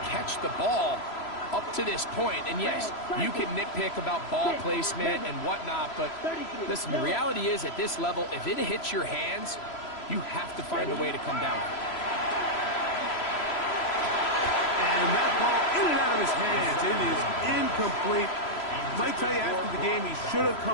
catch the ball up to this point, and yes, you can nitpick about ball placement and whatnot, but listen, the reality is at this level, if it hits your hands, you have to find a way to come down. And that ball in and out of his hands. It is incomplete. Might tell you after the game he should have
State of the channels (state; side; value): late; right; 3.0 ms